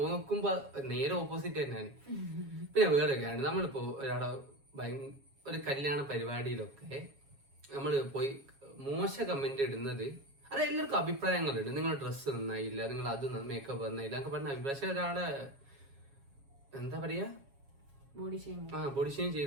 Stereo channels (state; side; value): late; left; 7.3 ms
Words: നേരെ ഓപ്പോസിറ്റ് തന്നെയാണ്. പിന്നെ വേറൊക്കെയാണ്, നമ്മളിപ്പോ ഒരാളെ ഒരു കല്യാണ പരിപാടിയിലൊക്കെ നമ്മൾ പോയി മോശ കമന്റ് ഇടുന്നത്, അത് എല്ലാവർക്കും അഭിപ്രായങ്ങളുണ്ട്. നിങ്ങളുടെ ഡ്രസ്സ് നന്നായില്ല, നിങ്ങൾ അത് മേക്കപ്പ് നന്നായില്ല എന്നൊക്കെ പറഞ്ഞ അഭിപ്രായം. പക്ഷെ ഒരാളെ എന്താ പറയാ ബോഡി ഷെയിം